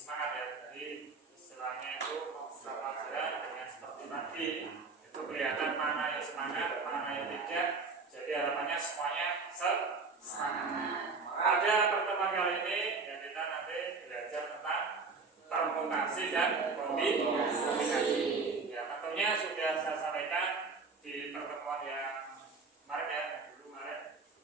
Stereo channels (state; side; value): quieter; left; 4.4 dB